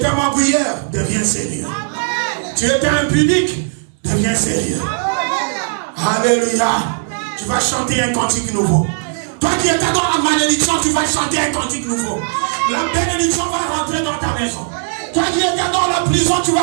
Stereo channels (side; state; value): left; silent; 61 dB below the other